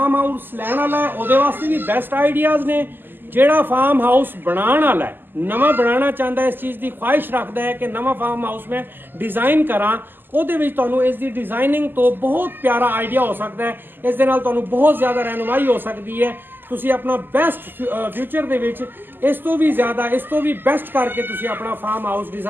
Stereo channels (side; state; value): left; late; 0.093 ms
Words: ਹਾਊਸ ਲੈਣ ਵਾਲਾ ਹੈ ਉਹਦੇ ਵਾਸਤੇ ਵੀ ਬੈਸਟ ਆਈਡੀਆਜ਼ ਨੇ। ਜਿਹੜਾ ਫਾਰਮ ਹਾਊਸ ਬਣਾਉਣ ਵਾਲਾ ਹੈ, ਨਵਾਂ ਬਣਾਉਣਾ ਚਾਹੁੰਦਾ, ਇਸ ਚੀਜ਼ ਦੀ ਖੁਆਇਸ਼ ਰੱਖਦਾ ਹੈ ਕਿ ਨਵਾਂ ਫਾਰਮ ਹਾਊਸ ਮੈਂ ਡਿਜ਼ਾਈਨ ਕਰਾਂ, ਉਹਦੇ ਵਿੱਚ ਤੁਹਾਨੂੰ ਇਸ ਦੀ ਡਿਜ਼ਾਈਨਿੰਗ ਤੋਂ ਬਹੁਤ ਪਿਆਰਾ ਆਈਡੀਆ ਹੋ ਸਕਦਾ ਹੈ। ਇਸ ਦੇ ਨਾਲ ਤੁਹਾਨੂੰ ਬਹੁਤ ਜ਼ਿਆਦਾ ਰਹਿਨੁਮਾਈ ਹੋ ਸਕਦੀ ਹੈ। ਤੁਸੀਂ ਆਪਣਾ ਬੈਸਟ ਫਿਊਚਰ ਦੇ ਵਿੱਚ ਇਸ ਤੋਂ ਵੀ ਜ਼ਿਆਦਾ, ਇਸ ਤੋਂ ਵੀ ਬੈਸਟ ਕਰਕੇ ਤੁਸੀਂ ਆਪਣਾ ਫਾਰਮ ਹਾਊਸ